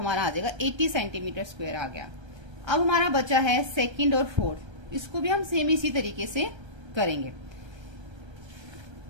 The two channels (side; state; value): left; late; 1.3 ms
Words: आ जाएगा 80 सेंटीमीटर स्क्वायर आ गया। अब हमारा बचा है सेकंड और फोर्थ, इसको भी हम सेम इसी तरीके से करेंगे।